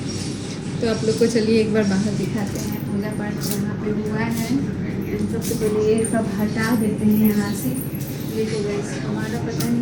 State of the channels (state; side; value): identical; both; correlation 1.00